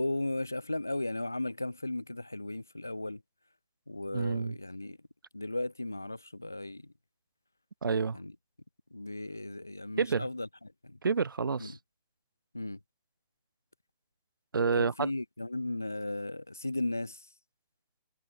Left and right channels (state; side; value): inverted; both; correlation -0.79